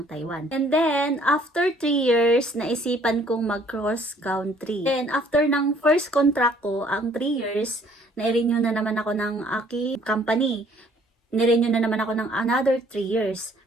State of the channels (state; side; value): normal; both; correlation 0.59